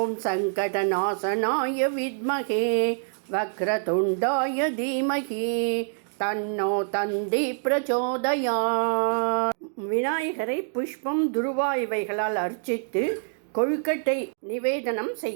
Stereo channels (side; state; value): left; silent; digital silence